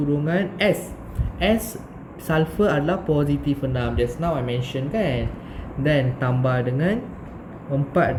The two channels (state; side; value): identical; both; correlation 1.00